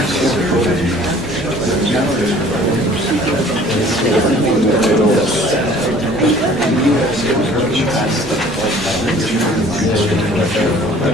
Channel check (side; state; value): both; normal; correlation 0.52